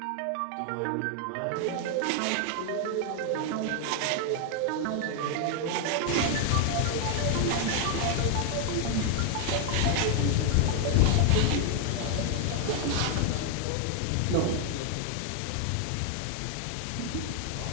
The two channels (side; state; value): both; different; correlation 0.00